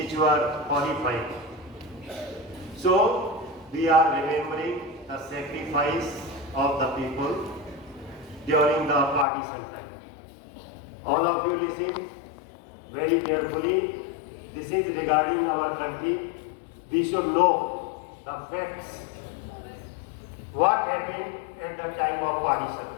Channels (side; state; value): right; drops out; at 9.2 s